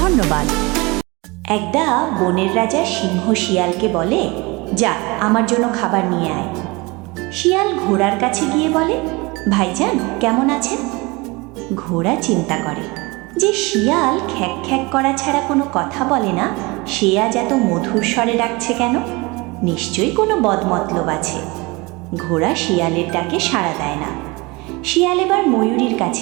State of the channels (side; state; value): left; quieter; 25.1 dB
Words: একদা বনের রাজা সিংহ শিয়ালকে বলে, যা আমার জন্য খাবার নিয়ে আয়। শিয়াল ঘোড়ার কাছে গিয়ে বলে, ভাইজান কেমন আছেন? ঘোড়া চিন্তা করে যে শিয়াল খ্যাক খ্যাক করা ছাড়া কোনো কথা বলে না, সে আজ এত মধুর স্বরে ডাকছে কেন? নিশ্চয়ই কোনো বদমতলব আছে। ঘোড়া শিয়ালের ডাকে সাড়া দেয় না। শিয়াল এবার ময়ূরীর